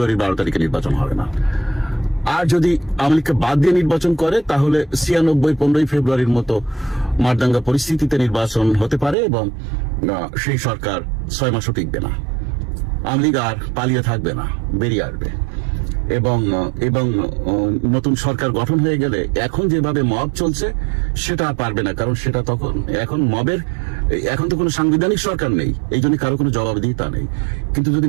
12 তারিখে নির্বাচন হবে না। আর যদি আওয়ামী লীগকে বাদ দিয়ে নির্বাচন করে তাহলে 96-15 ফেব্রুয়ারির মতো মারদাঙ্গা পরিস্থিতিতে নির্বাচন হতে পারে এবং সেই সরকার 6 মাসও টিকবে না। আওয়ামী লীগ আর পালিয়ে থাকবে না, বেরিয়ে আসবে এবং নতুন সরকার গঠন হয়ে গেলে এখন যেভাবে মব চলছে সেটা আর পারবে না, কারণ সেটা এখন তো কোনো সাংবিধানিক সরকার নেই, এই জন্য কারো কোনো জবাবদিহিতা নেই। কিন্তু যদি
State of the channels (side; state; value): left; drops out; at 9.2 s